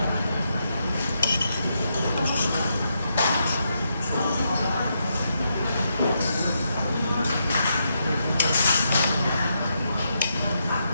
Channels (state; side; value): inverted; both; correlation -0.81